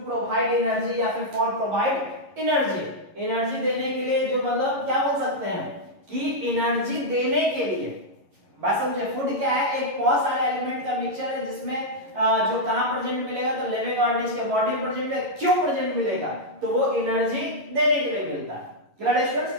provide energy, या फिर फॉर प्रोवाइड एनर्जी देने के लिए, जो मतलब क्या बोल सकते हैं कि एनर्जी देने के लिए। बात समझे? फूड क्या है? एक बहुत सारे एलिमेंट का मिक्सचर है, जिसमें जो कहां प्रेजेंट मिलेगा? तो लिविंग ऑर्गेनिज्म के बॉडी में प्रेजेंट है। क्यों प्रेजेंट मिलेगा? तो वो एनर्जी देने के लिए मिलता है। क्लियर है स्टूडेंट्स?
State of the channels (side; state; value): left; late; 11 ms